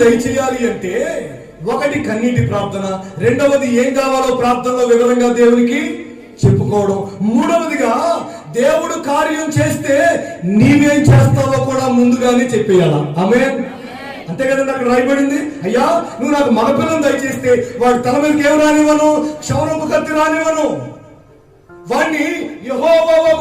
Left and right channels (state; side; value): identical; both; correlation 1.00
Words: దయచేయాలి అంటే, ఒకటి కన్నీటి ప్రార్థన, రెండవది ఏం కావాలో ప్రార్థనలో వివరంగా దేవునికి చెప్పుకోవడం, మూడవదిగా దేవుడు కార్యం చేస్తే నీవేం చేస్తావో కూడా ముందుగానే చెప్పేయాలా. ఆమేన్. అంతే కదండి, అక్కడ రాయబడింది. అయ్యా నువ్వు నాకు మగపిల్లను దయచేస్తే వాడి తల మీదకి ఏం రానివ్వను, క్షౌరపు కత్తి రానివ్వను, వాడిని